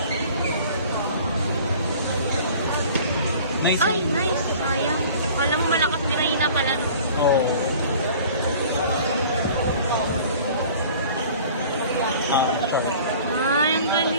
Nice. Ay, nice. Sayang. Wala mo malakas din na pala, no? Oo. Ay, ang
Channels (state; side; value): inverted; both; correlation -0.47